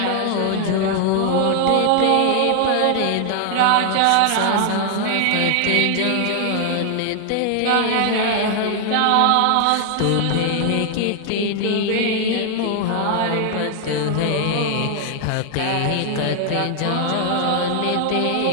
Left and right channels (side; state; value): both; different; correlation 0.00